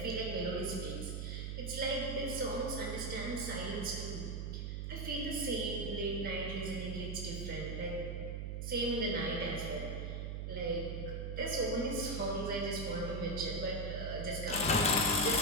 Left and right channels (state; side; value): noise; right; hum, 3 dB below the sound